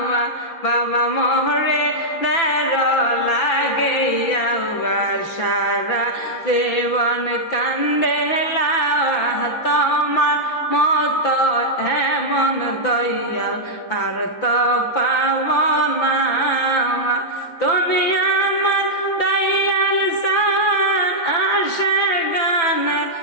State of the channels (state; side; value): late; right; 5.9 ms